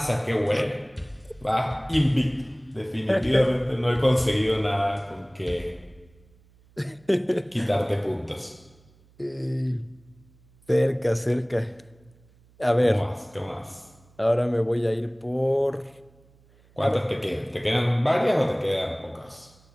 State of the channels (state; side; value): noise; right; hum, 30 dB below the sound